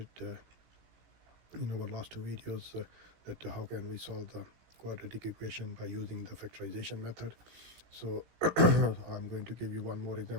in our last two videos that how can we solve the quadratic equation by using the factorization method. So I'm going to give you one more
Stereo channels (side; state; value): left; late; 17 ms